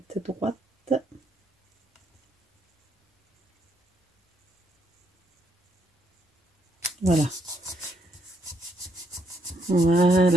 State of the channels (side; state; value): both; normal; correlation 0.74